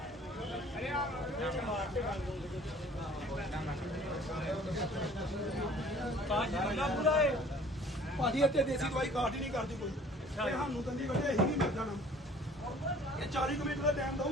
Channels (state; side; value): normal; both; correlation 0.52